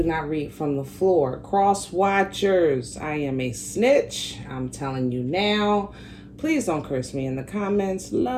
not read from the floor. Cross watchers, I am a snitch. I'm telling you now. Please don't curse me in the comments.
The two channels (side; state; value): both; identical; correlation 1.00